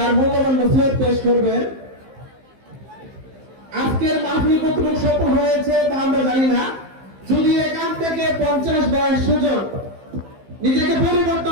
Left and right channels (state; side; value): late; left; 15 ms